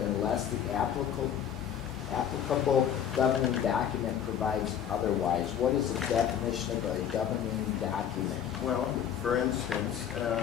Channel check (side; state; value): right; quieter; 9.1 dB